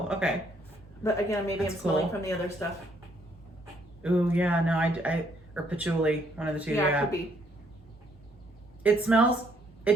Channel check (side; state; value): both; normal; correlation 0.68